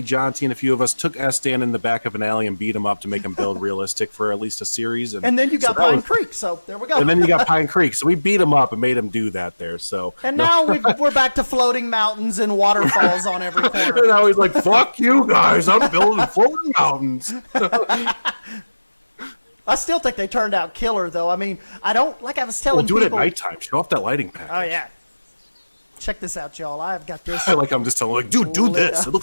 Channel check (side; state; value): both; inverted; correlation -1.00